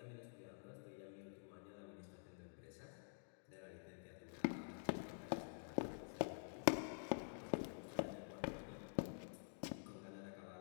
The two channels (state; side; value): silent; right; digital silence